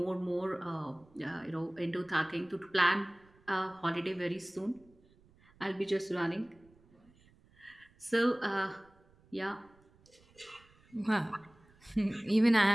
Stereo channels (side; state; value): right; noise; rumble, 30 dB below the sound